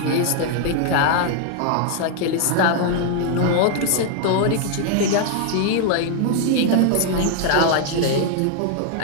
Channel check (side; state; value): both; different; correlation 0.00